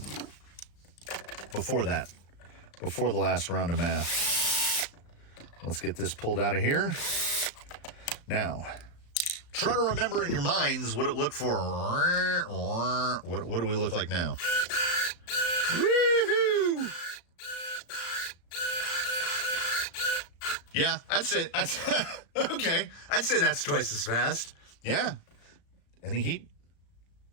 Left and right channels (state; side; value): late; right; 35 ms